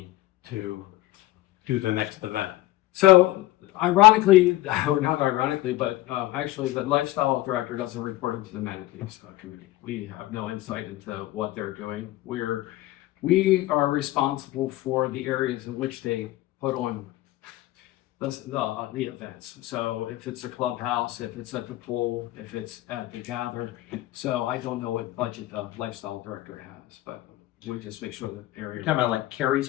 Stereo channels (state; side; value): quieter; right; 16.8 dB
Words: to do the next event? So ironically, or not ironically, but actually the lifestyle director doesn't report into the amenities committee. We have no insight into what they're doing. We are responsible for the areas in which they put on the events. So if it's a clubhouse, if it's at the pool, if it's at the gather. So I don't know what budget the lifestyle director has, but we just make sure that area. You're talking about like Carrie's